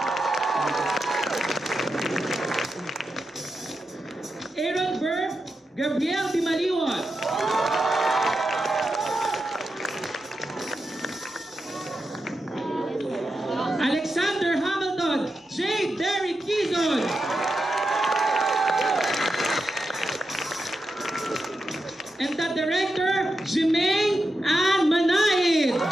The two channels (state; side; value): normal; both; correlation 0.88